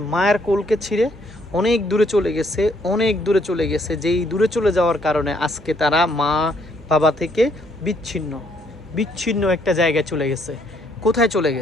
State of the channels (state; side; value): normal; both; correlation 0.69